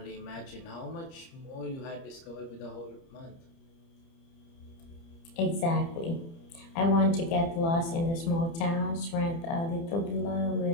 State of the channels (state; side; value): late; right; 30 ms